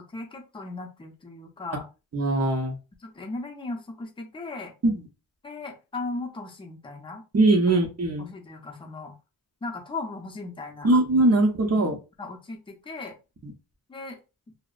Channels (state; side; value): normal; both; correlation 0.39